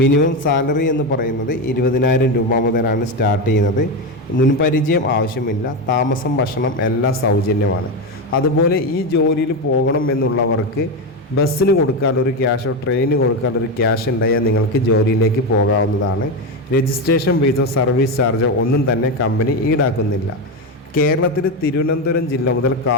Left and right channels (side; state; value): both; normal; correlation 0.13